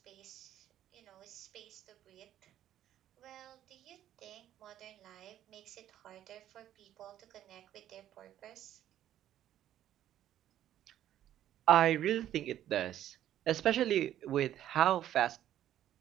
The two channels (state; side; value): quieter; left; 11.8 dB